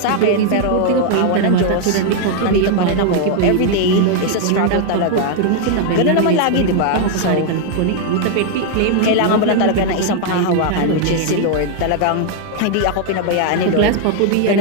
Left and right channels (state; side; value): different; both; correlation 0.00